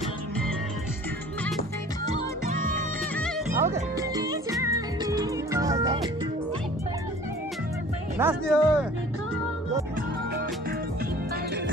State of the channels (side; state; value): both; normal; correlation 0.48